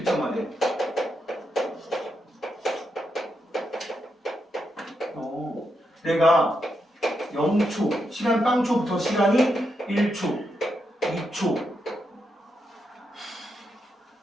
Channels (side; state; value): both; normal; correlation 0.83